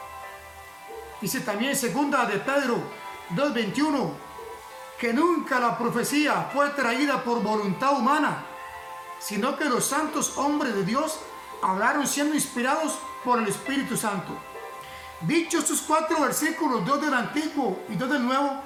Dice también segunda de Pedro 2:21, que nunca la profecía fue traída por voluntad humana, sino que los santos hombres de Dios hablaron siendo inspirados por el Espíritu Santo. Dichos estos 4 versículos, 2 del Antiguo y 2 del Nuevo,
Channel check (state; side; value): identical; both; correlation 1.00